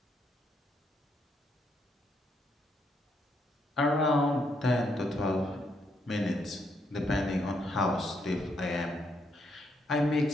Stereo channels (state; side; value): normal; both; correlation 0.76